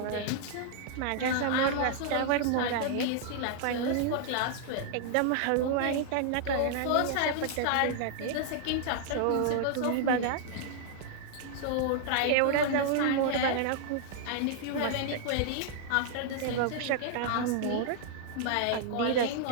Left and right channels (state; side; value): different; both; correlation -0.01